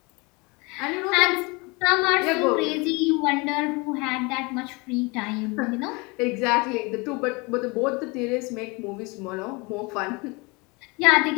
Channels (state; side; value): quieter; right; 27.2 dB